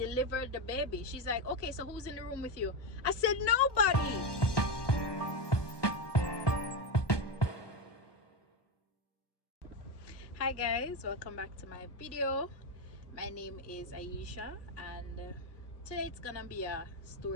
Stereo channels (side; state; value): right; late; 1.2 ms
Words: the baby. She's like, okay, so who's in the room with you? I said, nobody. Hi guys, welcome back to my video. My name is Aisha, and today it's gonna be a